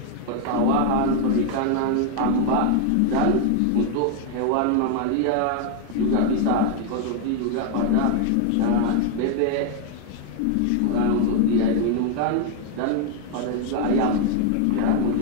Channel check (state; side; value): different; both; correlation 0.00